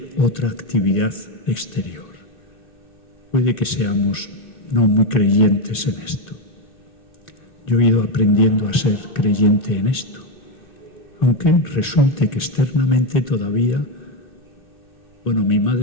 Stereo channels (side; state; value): right; late; 2.9 ms